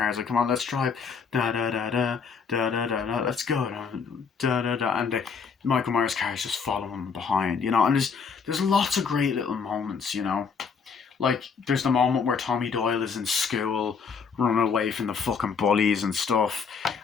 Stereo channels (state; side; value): quieter; right; 5.8 dB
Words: It's like, come on, let's drive. Da da da da da da da da. Let's go. Da da da. And Michael Myers' car is just following behind. And there's lots of great little moments. Like, there's the moment where Tommy Doyle is in school running away from the fucking bullies and stuff. And